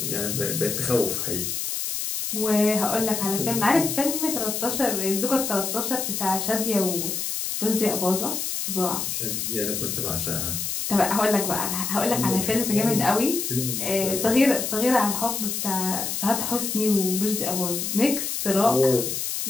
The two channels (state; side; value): noise; left; hiss, 2 dB below the sound